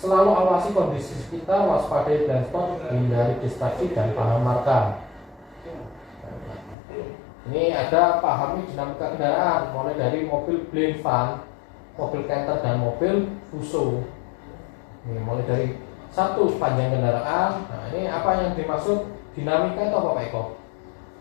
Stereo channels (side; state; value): right; drops out; at 6.8 s